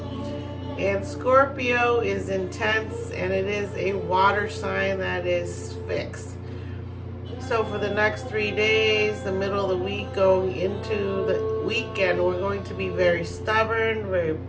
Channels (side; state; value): both; identical; correlation 1.00